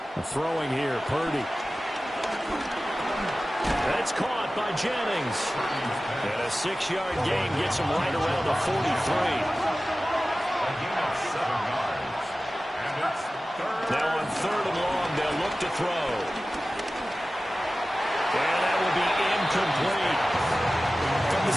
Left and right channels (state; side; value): normal; both; correlation 0.96